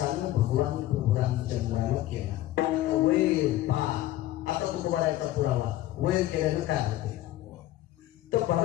भगवान प्रभू रामचंद्राला केला. वैर पा आता तुकोबारायचा पुरावा वैर केल्यानं काय होते. तर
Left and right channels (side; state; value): right; quieter; 14.9 dB